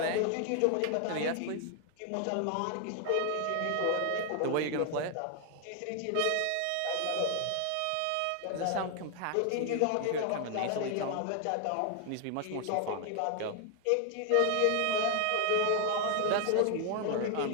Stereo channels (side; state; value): both; different; correlation 0.00